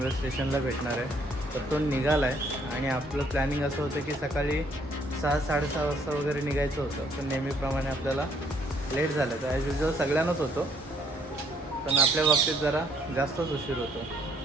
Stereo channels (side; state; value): both; normal; correlation 0.67